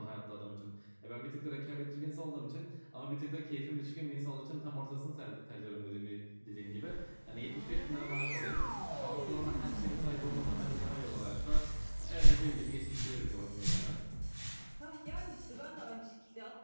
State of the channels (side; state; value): both; inverted; correlation -1.00